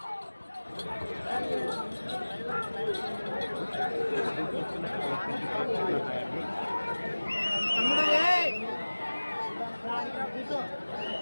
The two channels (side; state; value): both; inverted; correlation -1.00